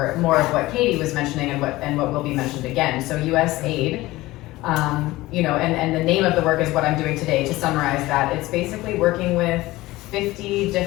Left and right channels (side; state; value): right; quieter; 18.5 dB